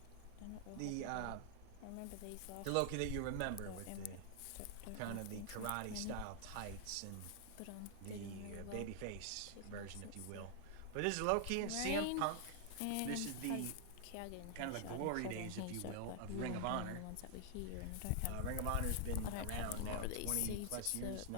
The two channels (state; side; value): different; both; correlation 0.00